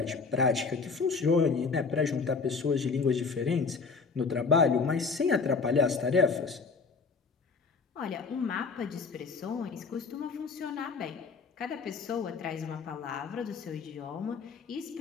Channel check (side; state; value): right; quieter; 4.8 dB